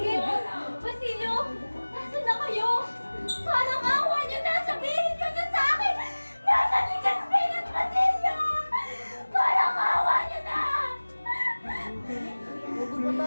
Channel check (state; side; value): inverted; both; correlation -1.00